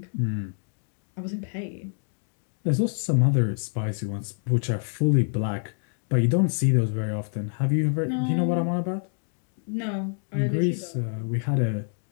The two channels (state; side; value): silent; right; 60 dB below the other